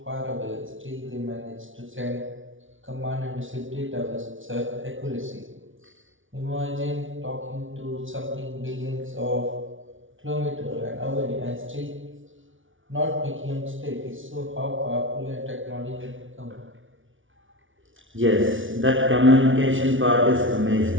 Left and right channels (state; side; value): late; left; 0.57 ms